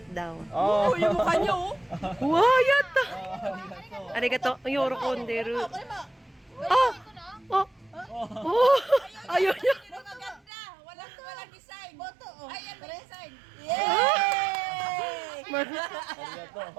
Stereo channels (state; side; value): drops out; left; at 10.4 s